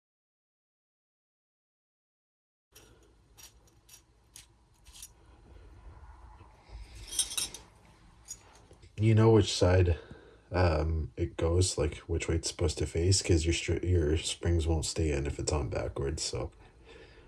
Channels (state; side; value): identical; both; correlation 1.00